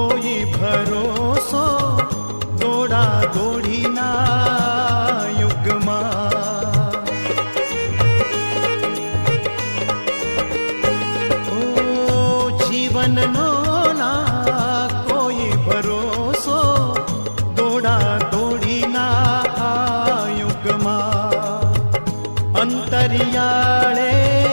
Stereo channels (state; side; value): inverted; both; correlation -1.00